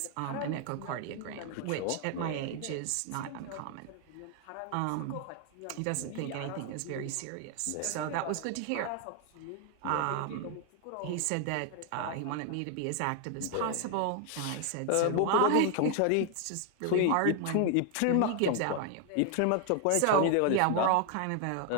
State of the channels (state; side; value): different; both; correlation 0.00